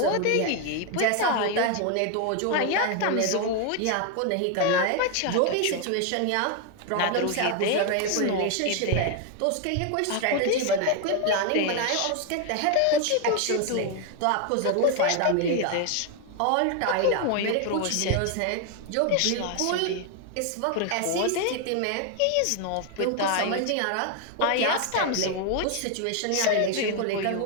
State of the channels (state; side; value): different; both; correlation 0.01